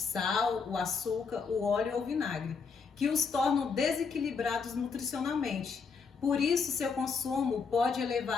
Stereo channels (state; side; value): quieter; right; 5.4 dB